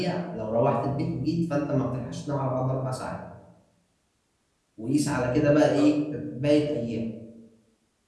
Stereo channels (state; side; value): identical; both; correlation 1.00